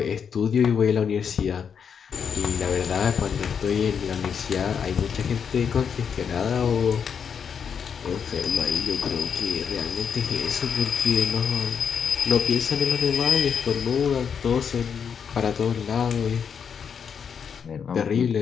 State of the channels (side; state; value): right; quieter; 7.1 dB